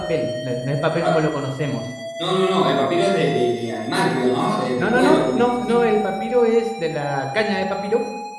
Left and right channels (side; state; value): both; identical; correlation 1.00